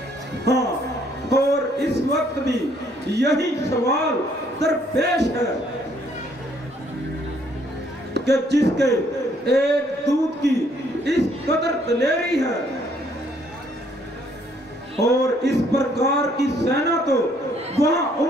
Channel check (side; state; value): both; normal; correlation 0.66